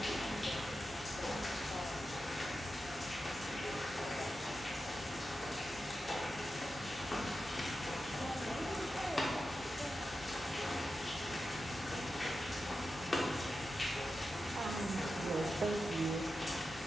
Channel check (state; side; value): normal; both; correlation 0.91